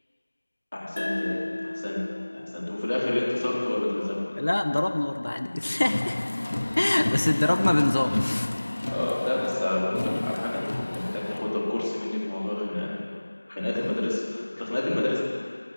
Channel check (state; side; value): inverted; both; correlation -1.00